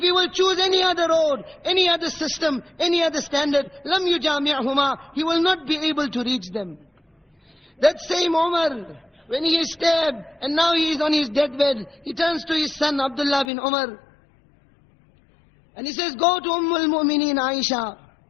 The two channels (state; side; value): drops out; right; at 13.5 s